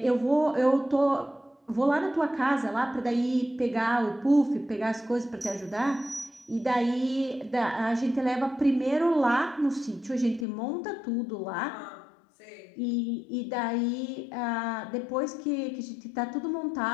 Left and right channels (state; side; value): drops out; right; at 10.5 s